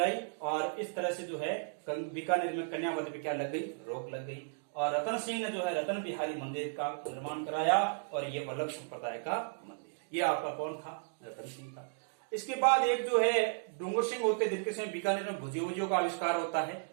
और इस तरह से जो है बीकानेर में कन्यावध पे क्या लग गई? रोक लग गई। और रतन सिंह ने जो है रतन बिहारी मंदिर का निर्माण कराया। और ये वल्लभ संप्रदाय का मंदिर। ये आपका कौन था? रतन सिंह था। इसके बाद एक जो है डूंगर सिंह होते, जिनके समय बीकानेर में भुजियों का आविष्कार होता है।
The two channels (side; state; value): left; silent; digital silence